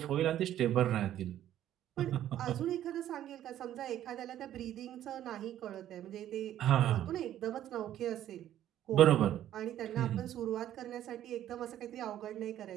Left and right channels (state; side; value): quieter; left; 11.9 dB